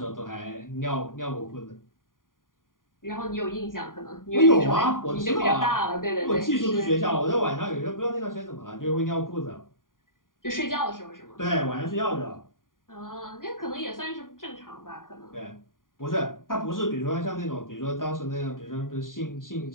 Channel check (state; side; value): late; right; 0.90 ms